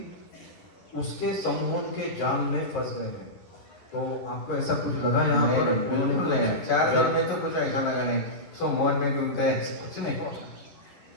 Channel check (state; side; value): late; right; 11 ms